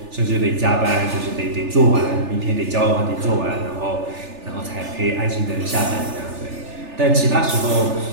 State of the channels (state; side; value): late; left; 3.4 ms